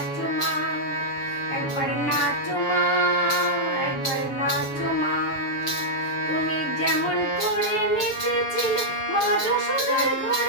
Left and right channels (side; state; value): right; late; 6.9 ms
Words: মা, একবার নাচো মা, একবার নাচো মা। তুমি যেমন করে নেচেছিলে মা যশোদার